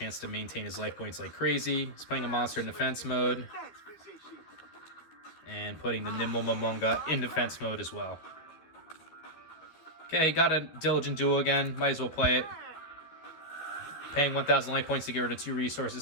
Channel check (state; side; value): late; right; 13 ms